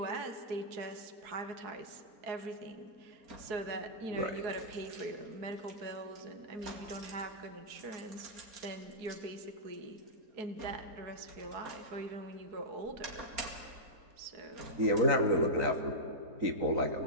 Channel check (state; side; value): late; left; 4.7 ms